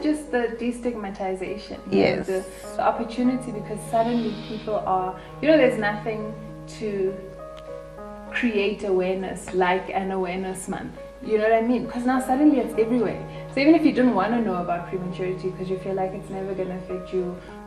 just the destigmatization. Yes. The opportunity, because suddenly people are, there's nothing to create awareness like an awareness month. You know what I mean? Because now suddenly it's everywhere. So even if you didn't want to know about prematurity because you feel like it's never going to affect you,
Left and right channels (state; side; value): identical; both; correlation 1.00